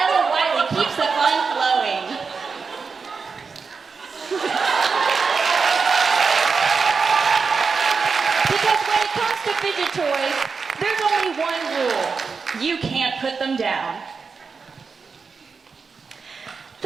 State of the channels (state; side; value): quieter; left; 5.1 dB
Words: Wiley keeps the fun flowing. Because when it comes to fidget toys, there's only one rule. You can't put them down.